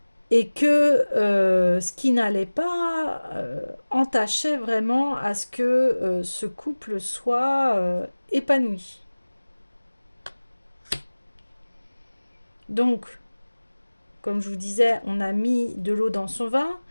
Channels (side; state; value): both; inverted; correlation -1.00